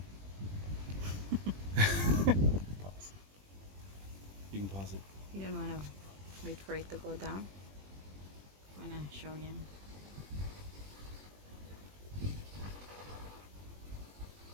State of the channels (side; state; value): left; late; 20 ms